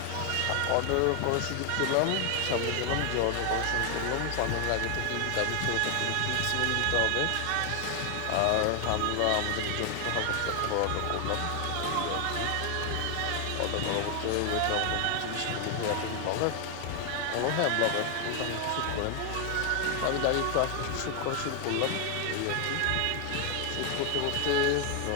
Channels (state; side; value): different; both; correlation 0.00